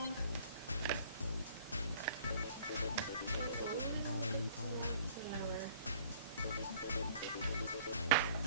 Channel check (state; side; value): inverted; both; correlation -0.53